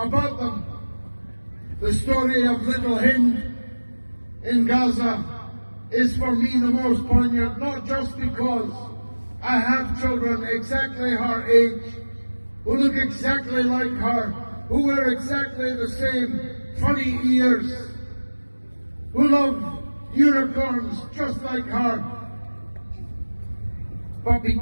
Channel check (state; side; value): inverted; both; correlation -1.00